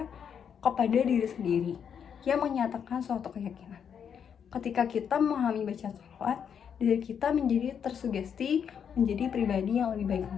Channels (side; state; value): right; quieter; 7.7 dB